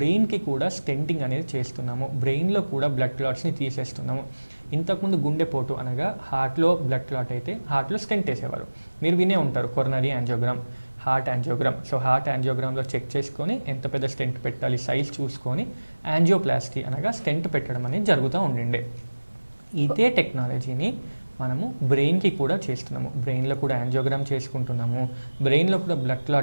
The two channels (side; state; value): both; inverted; correlation -1.00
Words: కూడా స్టెంటింగ్ అనేది చేస్తున్నాము. బ్రెయిన్లో కూడా బ్లడ్ క్లాట్స్ని తీసేస్తున్నాము. ఇంతకుముందు గుండెపోటు అనగా హార్ట్లో బ్లడ్ క్లాట్ అయితే హార్ట్లో స్టెంట్ వేసేవారు. మీరు వినే ఉంటారు coronary angiogram, heart angiogram. So heart యాంజియోగ్రామ్లో చెక్ చేసుకొని ఎంత పెద్ద స్టెంట్ పెట్టాలి సైజ్ చూసుకొని యాంజియోప్లాస్టీ అనగా స్టెంట్ పెట్టడం అనేది జరుగుతూ ఉండిండే. ఇదే టెక్నాలజీని మనము బ్రెయిన్కి కూడా చేస్తున్నాము. బ్రెయిన్లో కూడా యాంజియోగ్రామ్ చేసుకుంటున్నాము. బ్రెయిన్లో కూడా బ్లడ్